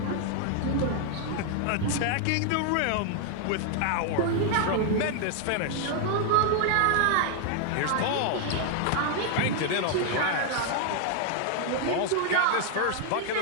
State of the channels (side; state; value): both; different; correlation 0.00